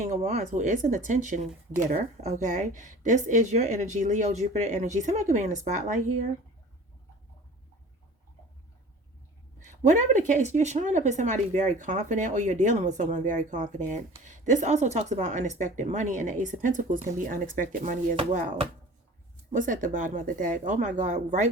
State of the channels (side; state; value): both; normal; correlation 0.42